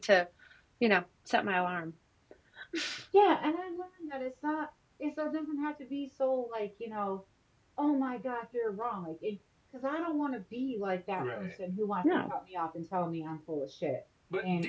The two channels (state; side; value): identical; both; correlation 1.00